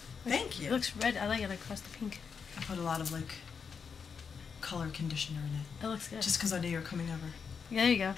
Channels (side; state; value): right; quieter; 6.1 dB